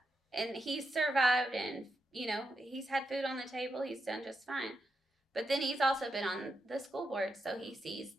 and he's survived, and he's had food on the table. He's done just fine. But then he's also been on the school board, so he sees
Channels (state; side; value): normal; both; correlation 0.85